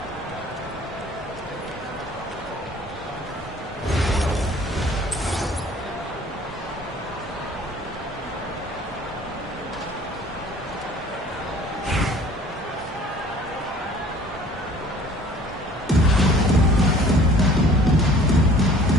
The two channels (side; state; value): both; normal; correlation 0.51